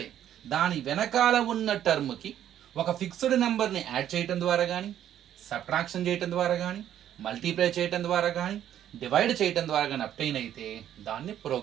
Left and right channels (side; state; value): left; quieter; 10.9 dB